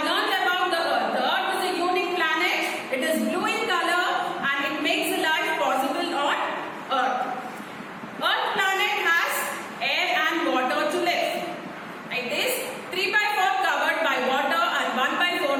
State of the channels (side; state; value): both; identical; correlation 1.00